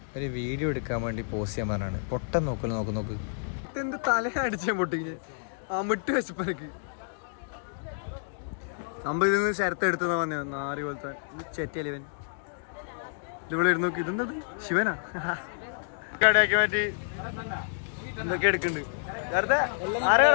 ഒരു വീഡിയോ എടുക്കാൻ വേണ്ടി പോസ്റ്റ് ചെയ്യാൻ പറഞ്ഞാണ്. പൊട്ടം നോക്ക് ഇതെന്ത് തല അടിച്ചാൻ പൊട്ടിങ്ങനെ അമിട്ട് വെച്ചപ്പനക്ക് സംഭവം ഇതിൽ നിന്ന് ശരത്ത് എടുത്തതാ വന്നേ. നാരി പോലത്തെ ചെറ്റിയല്ലേ ഇവൻ. ഇവിടെ ഇരുന്ന് നോക്കി. ഇതെന്തത് ശിവനാ കടയാക്കി മാറ്റി എന്തൊക്കെ എടുക്കുന്നുണ്ട്.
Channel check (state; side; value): silent; right; digital silence